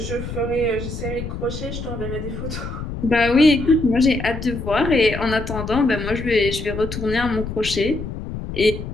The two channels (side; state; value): left; noise; rumble, 7 dB below the sound